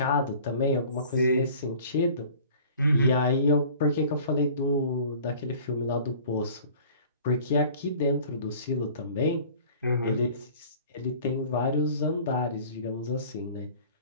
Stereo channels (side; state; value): both; inverted; correlation -0.47